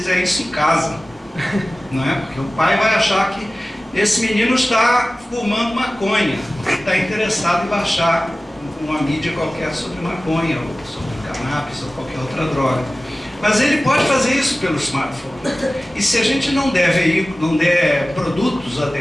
isso em casa, não é? Porque o pai vai achar que esse menino está fumando maconha, está interessado em baixar uma mídia qualquer sobre maconha, ou sobre cannabis, ou qualquer outra droga. Mas ele pode fazer isso pelo smartphone. E se a gente não der produtos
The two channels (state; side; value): normal; both; correlation 0.97